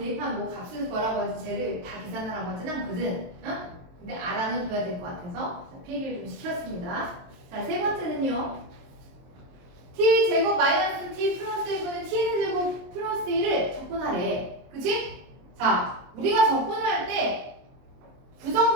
뭐 값을 구하라고 하지 쟤를 다 계산하라고 하진 않거든. 어? 근데 알아는 둬야 될 것 같아서 필기를 좀 시켰습니다. 자, 세 번째는요. t 제곱 마이너스 t 플러스 1분의 t 제곱 플러스 1을 적분하래. 그치? 자, 우리가 적분을 할 때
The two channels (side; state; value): left; late; 22 ms